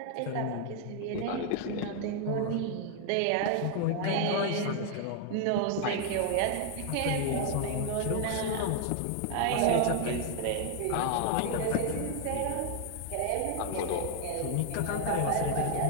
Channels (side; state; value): both; different; correlation 0.00